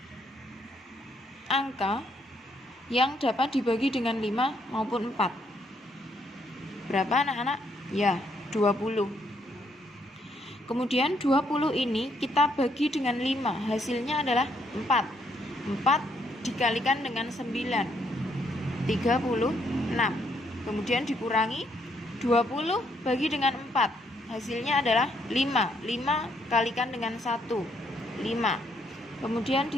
angka yang dapat dibagi dengan 5 maupun 4. Berapa anak-anak? Ya, 20. Kemudian 20 ini kita bagi dengan 5, hasilnya adalah 4. 4 dikalikan dengan 9, 36. Kemudian dikurangi 20 bagi dengan 4, hasilnya adalah 5. 5 kalikan dengan 1, 5. Kemudian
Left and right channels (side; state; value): both; normal; correlation 0.72